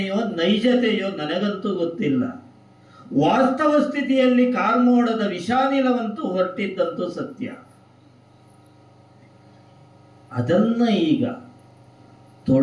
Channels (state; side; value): identical; both; correlation 1.00